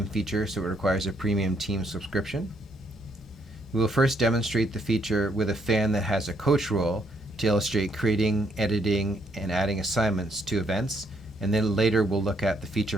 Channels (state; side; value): normal; both; correlation 0.73